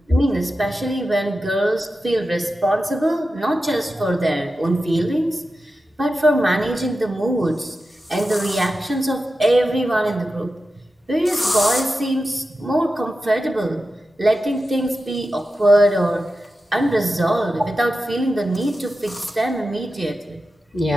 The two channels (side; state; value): both; normal; correlation 0.92